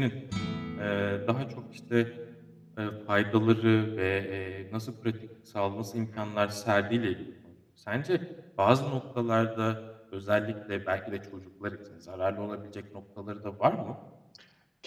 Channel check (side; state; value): both; identical; correlation 1.00